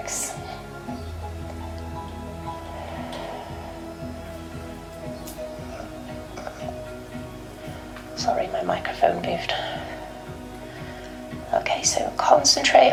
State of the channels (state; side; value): identical; both; correlation 1.00